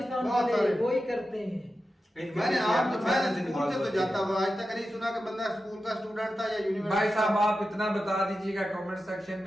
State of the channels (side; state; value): both; normal; correlation 0.92